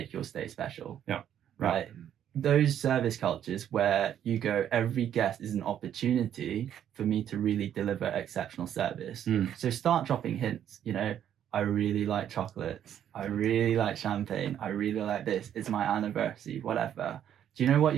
your stay special. Yeah. Right. Those service cultures where you go, every guest is an opportunity for me to really deliver exceptional service. So start dropping hints, I really like chocolates. I really like champagne. I really like this. It's my anniversary, whatever. Do you know what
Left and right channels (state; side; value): quieter; left; 10.0 dB